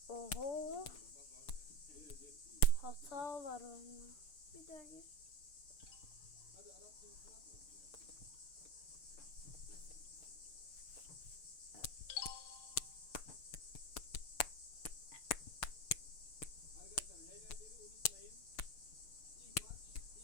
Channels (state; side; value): late; right; 6.8 ms